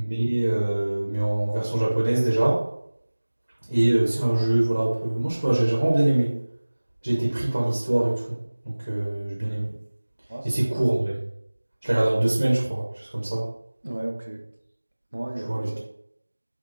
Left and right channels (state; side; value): inverted; both; correlation -1.00